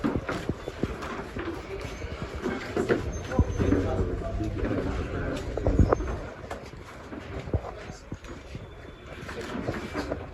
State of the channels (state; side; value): identical; both; correlation 1.00